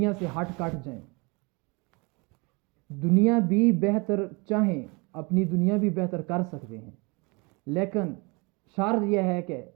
سے ہٹ کٹ جائیں، دنیا بھی بہتر چاہیں، اپنی دنیا بھی بہتر کر سکتے ہیں، لیکن شرط یہ ہے کہ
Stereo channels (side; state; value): left; quieter; 28.5 dB